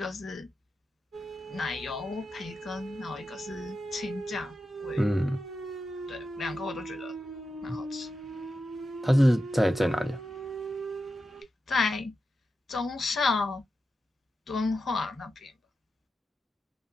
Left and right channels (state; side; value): normal; both; correlation 0.89